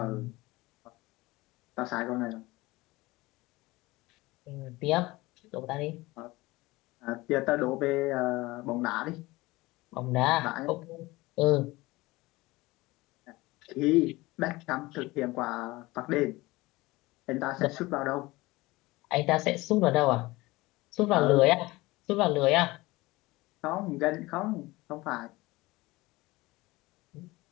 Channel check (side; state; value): right; quieter; 20.8 dB